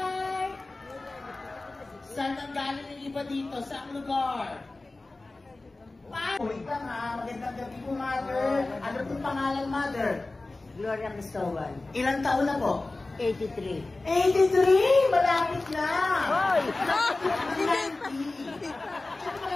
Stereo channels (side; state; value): right; quieter; 3.1 dB